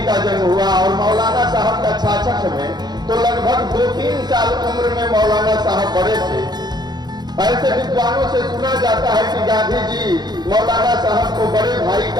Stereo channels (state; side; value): late; left; 0.20 ms